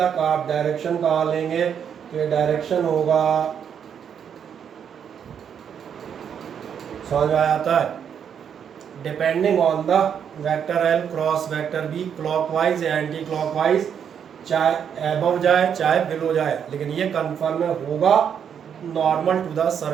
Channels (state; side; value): quieter; left; 8.0 dB